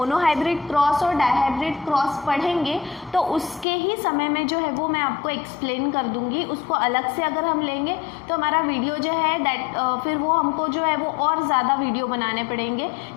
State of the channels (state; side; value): drops out; right; at 3.7 s